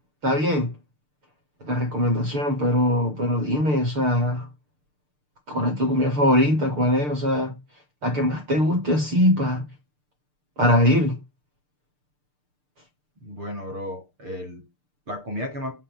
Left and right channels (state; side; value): late; left; 6.7 ms